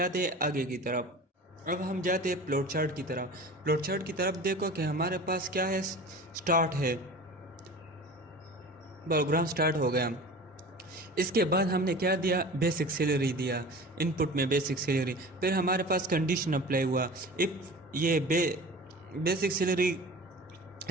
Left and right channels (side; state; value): both; normal; correlation 0.37